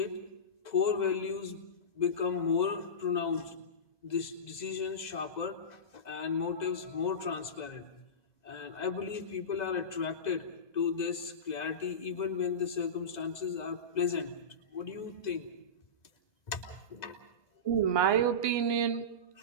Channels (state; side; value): late; right; 2.0 ms